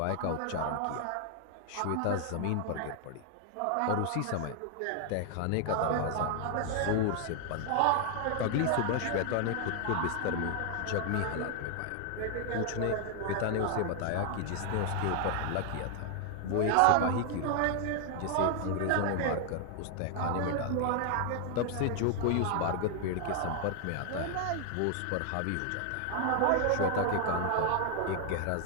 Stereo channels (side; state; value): both; different; correlation 0.00